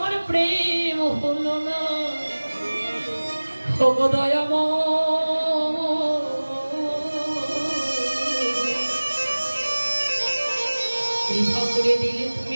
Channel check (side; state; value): both; inverted; correlation -1.00